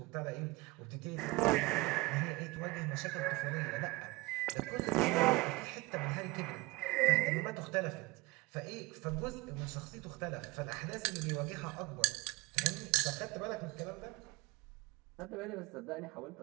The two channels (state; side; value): quieter; left; 22.3 dB